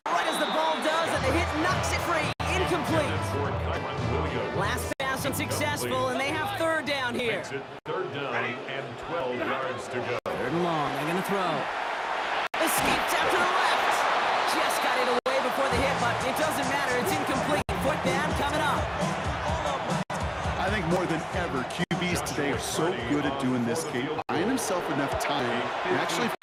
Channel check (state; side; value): identical; both; correlation 1.00